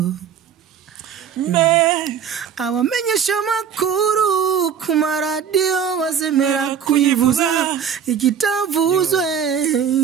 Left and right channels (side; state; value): left; quieter; 7.8 dB